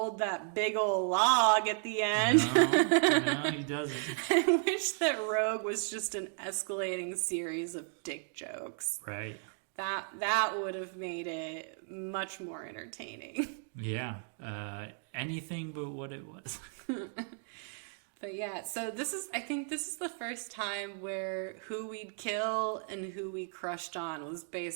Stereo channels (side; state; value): left; silent; 55 dB below the other